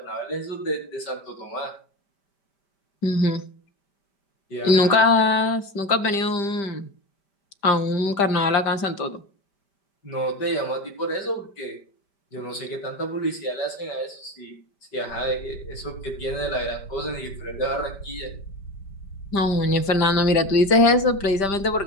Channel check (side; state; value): right; late; 5.1 ms